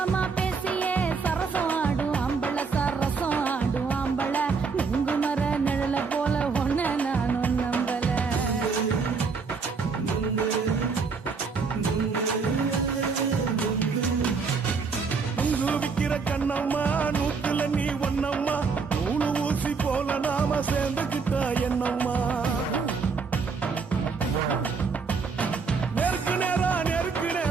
பேசியே சரசம் ஆடும் ஆம்பள சரசம் ஆடும் ஆம்பள நுங்கு மர நிழல போல ஒன்ன நானும் நம்பல நுங்கு விக்கிற கண்ணம்மா நூத்துல நீ ஒன்னம்மா நூலு ஊசி போல நாம சேர்ந்துக்கிட்டா என்னம்மா நேருக்கு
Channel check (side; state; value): left; quieter; 5.0 dB